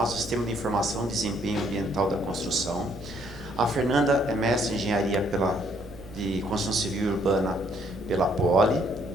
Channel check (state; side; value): normal; both; correlation 0.66